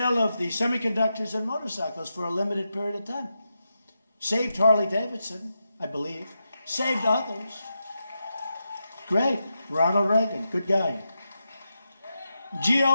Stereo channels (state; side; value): inverted; both; correlation -0.87